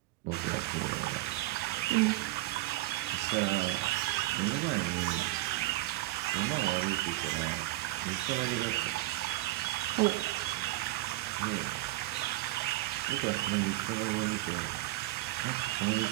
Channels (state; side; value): quieter; left; 18.4 dB